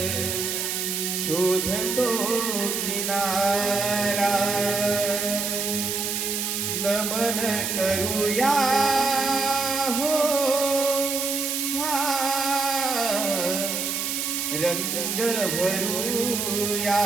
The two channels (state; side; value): noise; right; hiss, 1 dB below the sound